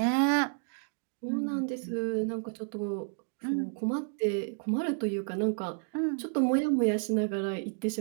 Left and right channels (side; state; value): left; silent; digital silence